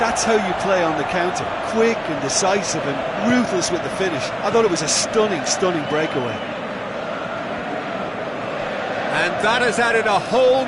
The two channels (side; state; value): both; identical; correlation 1.00